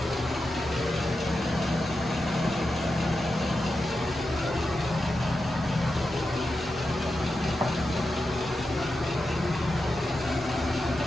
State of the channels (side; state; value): both; normal; correlation 0.89